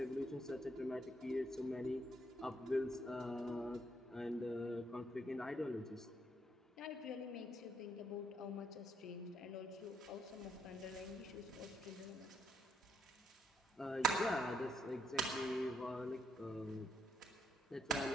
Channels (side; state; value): both; normal; correlation 0.75